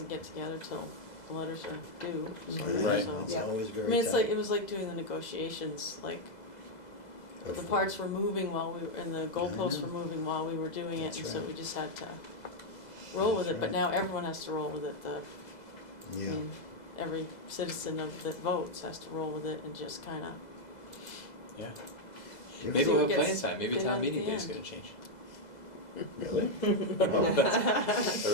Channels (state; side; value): late; right; 2.0 ms